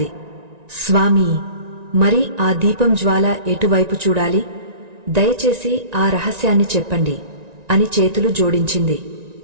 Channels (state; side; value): late; left; 1.9 ms